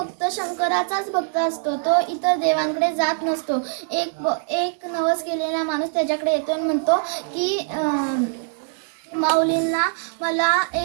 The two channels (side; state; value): left; silent; digital silence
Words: शंकराचाच भक्त असतो. तो इतर देवांकडे जात नसतो. एक नवस गेलेला माणूस त्याच्याकडे येतो आणि म्हणतो की माऊलींना मला